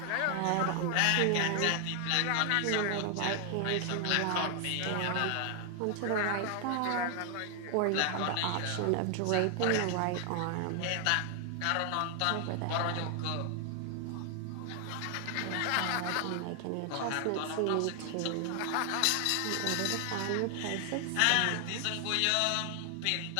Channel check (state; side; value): different; both; correlation 0.00